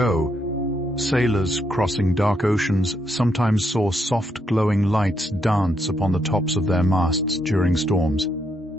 sailors crossing dark oceans sometimes saw soft glowing lights dance upon the tops of their masts during storms.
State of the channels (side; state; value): both; normal; correlation 0.77